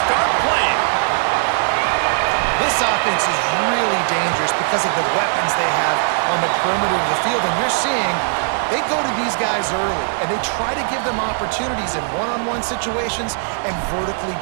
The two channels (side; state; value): left; silent; digital silence